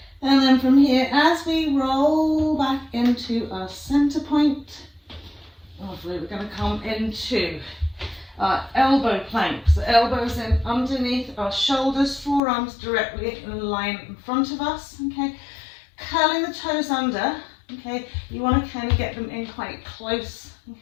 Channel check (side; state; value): right; drops out; at 12.4 s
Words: And then from here, as we roll back into our center point, lovely, we're going to come into our elbow planks. The elbows in underneath our shoulders, forearms directly in line in front of us, okay. Curling the toes under, okay. You want to kind of get them in quite close,